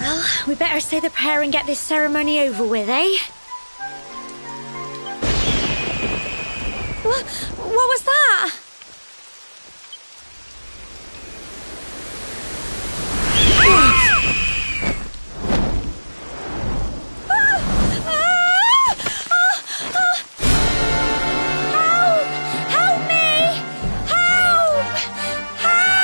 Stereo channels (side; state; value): both; inverted; correlation -1.00